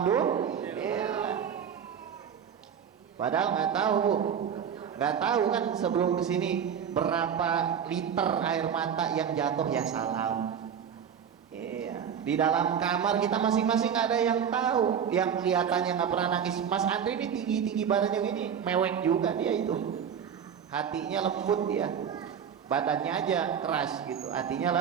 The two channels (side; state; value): left; quieter; 7.9 dB